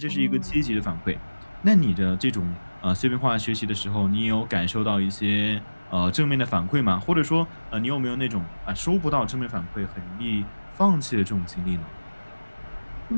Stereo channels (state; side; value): inverted; both; correlation -1.00